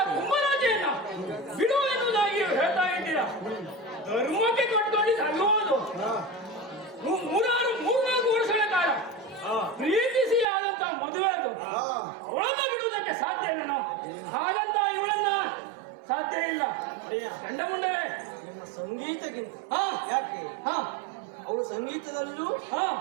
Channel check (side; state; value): left; drops out; at 10.5 s